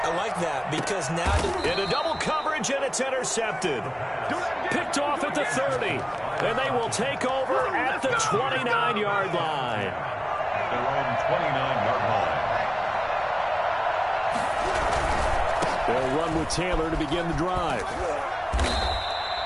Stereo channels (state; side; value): identical; both; correlation 1.00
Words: I like that because now... Into double coverage, and it's intercepted. Picked off at the 30. And they will take over at the 29-yard line. They're on the 29-yard line. They'll run with Taylor to begin the drive.